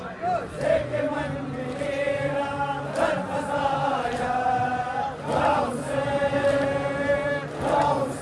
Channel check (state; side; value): identical; both; correlation 1.00